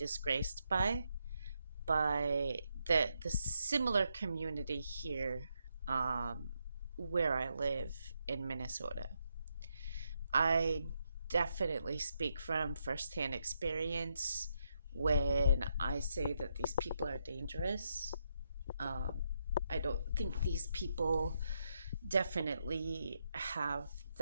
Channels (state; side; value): inverted; both; correlation -0.80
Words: by the similar community here, where I live in Minnesota. I definitely speak from firsthand experience when I say that these people are dangerous. Um, I don't think these people definitely have